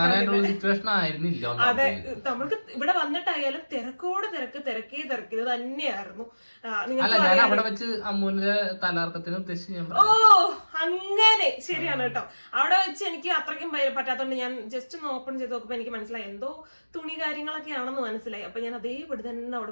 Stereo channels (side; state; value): both; inverted; correlation -1.00